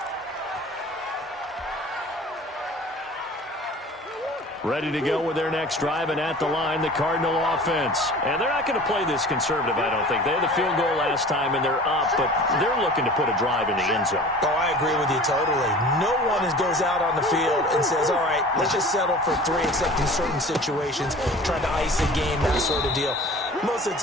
Ready to go with their next drive, and at the line, the Cardinal offense. And they're not going to play this conservative, I don't think. They had the field goal last time, and they're up, but they're looking to put a drive in the end zone. Oh, I agree with you totally. No one goes out on the field and says, all right, let's just settle for 3, except in certain situations, trying to ice a game, that sort of deal. Most of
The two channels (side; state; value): both; normal; correlation 0.42